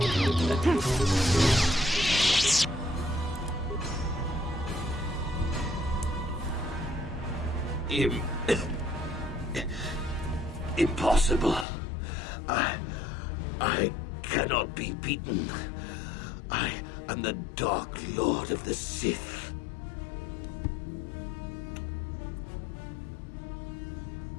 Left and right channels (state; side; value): drops out; right; at 11.7 s